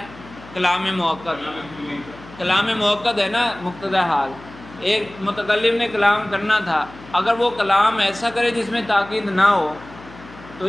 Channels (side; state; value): left; noise; hum, 19 dB below the sound